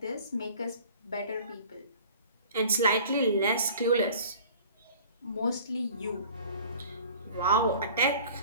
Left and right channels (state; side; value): inverted; both; correlation -0.46